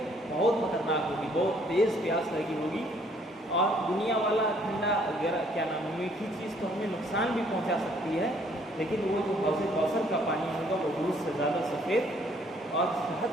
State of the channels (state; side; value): normal; both; correlation 0.63